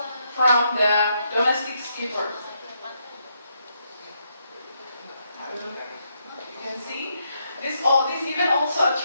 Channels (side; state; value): both; inverted; correlation -0.78